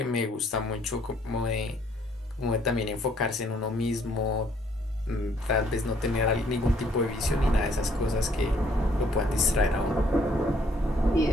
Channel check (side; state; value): both; normal; correlation 0.65